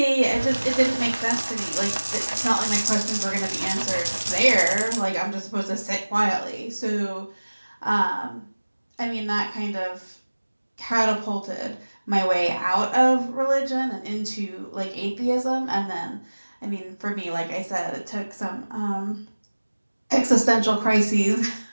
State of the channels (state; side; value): inverted; both; correlation -1.00